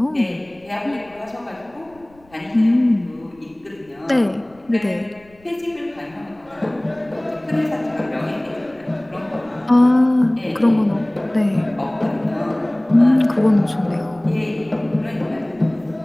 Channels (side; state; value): left; noise; rumble, 29 dB below the sound